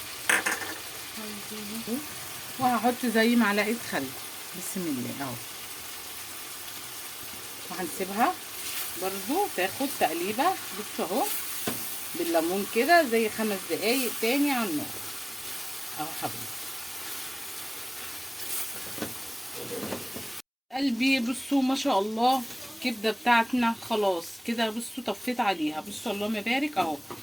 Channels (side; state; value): both; identical; correlation 1.00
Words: وهحط زي معلقه خل بسم الله اهو، وهنسيبها برضو تاخد تقليبه. بصوا اهو بالليمون كده زي 5 دقايق تاني على النار اهو حبيبي قلبي. بصوا ما شاء الله الكبده بتاعتنا خلاص كده. بصوا طفيت عليها، بصوا اللهم بارك اهو،